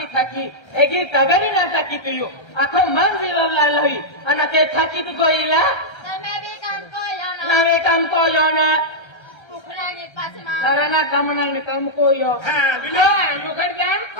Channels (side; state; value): right; late; 1.3 ms